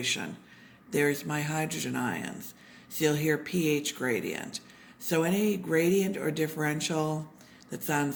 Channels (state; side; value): identical; both; correlation 1.00